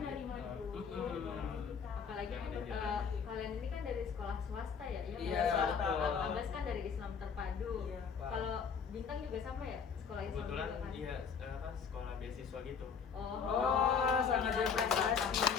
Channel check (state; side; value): quieter; right; 6.4 dB